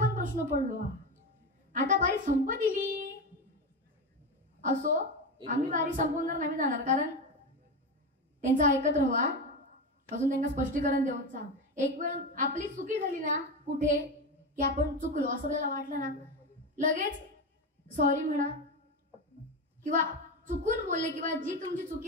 प्रश्न पडलो. आता बारी संप दिली असो, आम्ही बारी संपवणार नाही जाणार, कारण त्यांचं ऐकत राहा, अजून त्यांना स्पष्टीकरण देऊचा. एक वेळ आपली चुकी झाली ना कुठे की आपण चुकलो असं आपल्याला वाटलं ना, लगेच सॉरी म्हणा किंवा चुकून बोलले किंवा जी तुमची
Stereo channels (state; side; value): normal; both; correlation 0.18